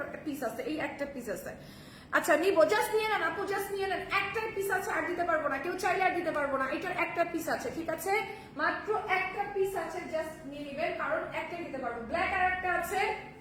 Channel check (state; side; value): identical; both; correlation 1.00